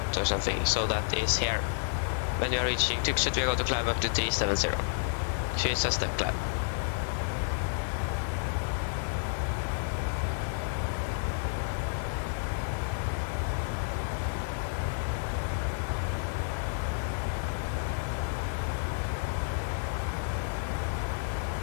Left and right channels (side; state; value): right; silent; digital silence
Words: or something. So that is here. When we are reaching Tromsø, we're going to climb up to 370. So it's a step climb.